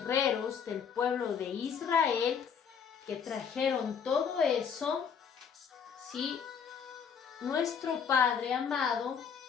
del pueblo de Israel que trajeron todo eso, ¿sí? Nuestro Padre amado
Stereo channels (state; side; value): quieter; right; 7.0 dB